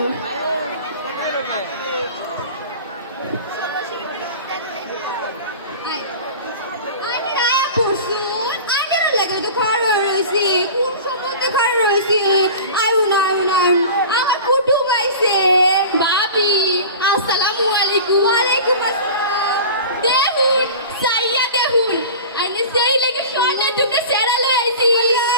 আমার কুটুম আইছে। ভাবি আসসালামু আলাইকুম। ওয়ালাইকুম আসসালাম। দেখুন সাইয়া দেখুন আইনে সেই লাগি সোনা টুকরা সেরা লই আইছি।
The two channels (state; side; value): inverted; both; correlation -0.36